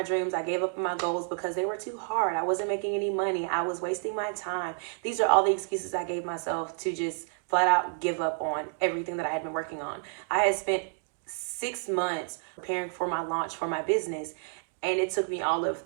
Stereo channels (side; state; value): left; silent; 58 dB below the other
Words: dreams. I gave up on my goals because they were too hard. I wasn't making any money. I was wasting my time. These are all the excuses I gave myself to just flat out give up on everything that I had been working on. I had spent 6 months preparing for my launch for my business, and it took me all of